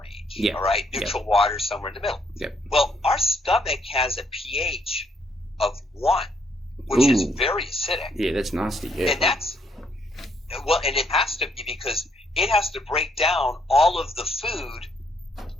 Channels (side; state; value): both; normal; correlation 0.71